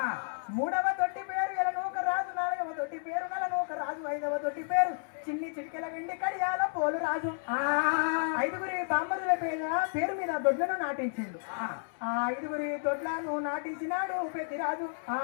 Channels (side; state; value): right; silent; 57 dB below the other